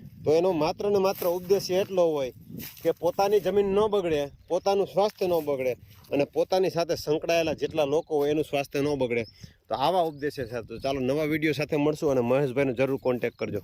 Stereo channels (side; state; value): both; identical; correlation 1.00